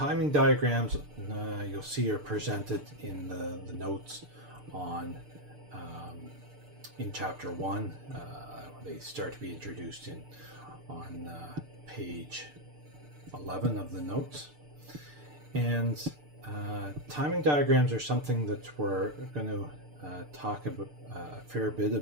diagrams you'll see are presented in the notes on in chapter 1. They start to be introduced on page 11 of the notes. And timing diagrams are something that we're going to talk about a fair bit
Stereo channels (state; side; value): late; left; 6.7 ms